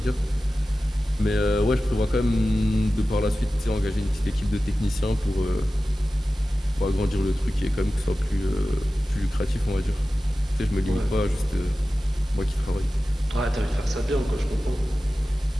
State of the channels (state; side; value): normal; both; correlation 0.95